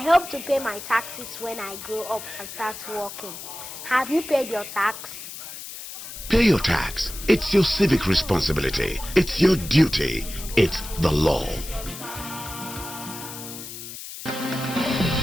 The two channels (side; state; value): left; noise; hiss, 11 dB below the sound